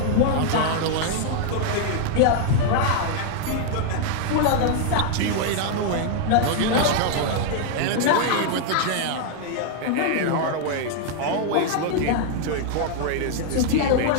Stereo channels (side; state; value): both; different; correlation 0.00